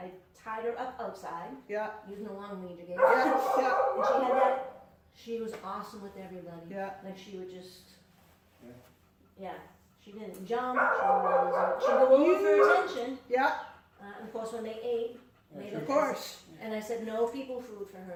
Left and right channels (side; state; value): both; identical; correlation 1.00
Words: tied her up outside yeah, using the long lead you gave. yeah, yeah, And she had that. She was awesome with everybody. yeah. Like she would just, Yeah. yeah. She didn't jump. She'd go over for attention. Yeah, And of course, when they ate, Yeah, they sure. of course. And I said, no people food for